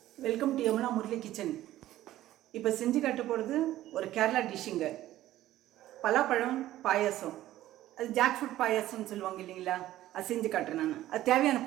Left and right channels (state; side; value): quieter; left; 14.3 dB